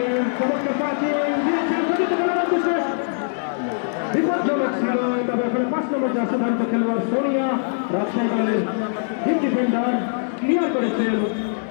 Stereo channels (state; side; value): silent; right; 59 dB below the other